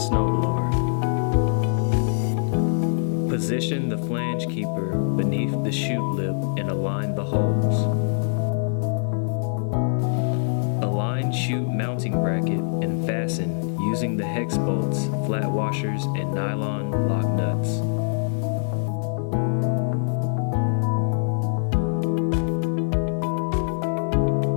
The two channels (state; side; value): silent; right; 61 dB below the other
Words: Position the flange keeper beneath the chute lip and align the holes. Align chute mounting bracket and fasten using the hex bolts, flat washers, and nylon lock nuts.